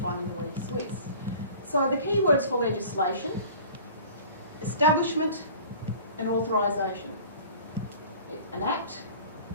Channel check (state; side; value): inverted; both; correlation -0.44